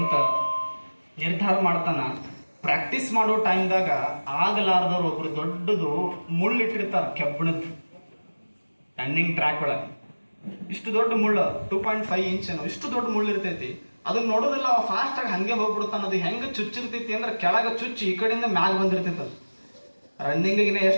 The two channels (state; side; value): inverted; both; correlation -1.00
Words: ನಿರ್ಧಾರ ಮಾಡ್ತಾನ. ಪ್ರಾಕ್ಟೀಸ್ ಮಾಡೋ ಟೈಮ್ದಾಗ ಆಗಲಾರ್ದವ್ರು ಒಬ್ರು ದೊಡ್ಡದು ಮುಳ್ಳಿಟ್ಟಿರ್ತಾರ, ಕೆಬ್ಬಣದ್ದು, ರನ್ನಿಂಗ್ ಟ್ರ್ಯಾಕ್ ಒಳಗೆ. ಇಷ್ಟು ದೊಡ್ಡ ಮುಳ್ಳು, 2.5 ಇಂಚ್ ಏನೋ, ಇಷ್ಟು ದೊಡ್ಡ ಮುಳ್ಳು ಇರ್ತೈತಿ. ಅದನ್ನ ನೋಡೋದಿಲ್ಲ, ಅವ ಫಾಸ್ಟ್ ಆಗಿ ಹಂಗೆ ಹೋಗ್ಬಿಡ್ತಾನ. ಅದು ಹೆಂಗ ಚುಚ್ಚಿರ್ತೈತಿ ಅಂದ್ರೆ ಕೆಳಗ ಚುಚ್ಚಿ ಈ ಕಡೆಯಿಂದ ಮ್ಯಾಗ ಬಂದಿರ್ತೈತಿ. ಅದು ರನ್ನಿಂಗ್